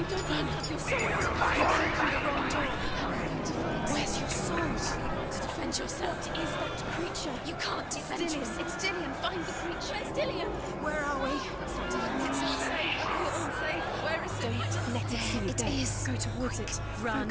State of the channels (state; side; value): identical; both; correlation 1.00